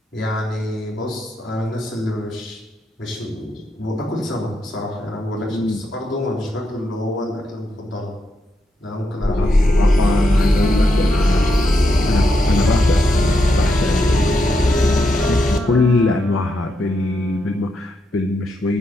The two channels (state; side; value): normal; both; correlation 0.82